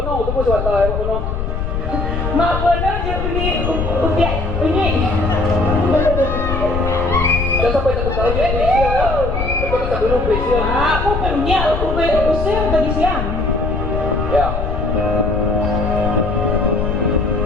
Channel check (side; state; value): left; noise; rumble, 3 dB below the sound